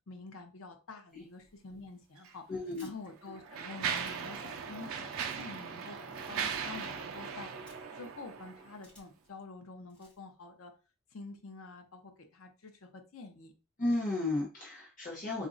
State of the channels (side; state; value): both; normal; correlation 0.39